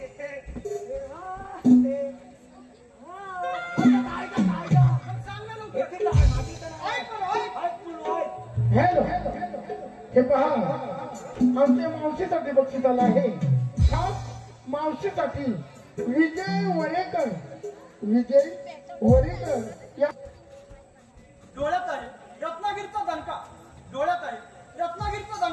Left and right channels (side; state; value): both; identical; correlation 1.00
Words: हॅलो हे पहा आमच्या मावशीसाठी बक्षीस आलं आहे खास मावशीसाठी विजय वरेकर या डोळ्यात आहे रत्नागिरीचा दणका डोळ्यात आहे रत्नागिरीचा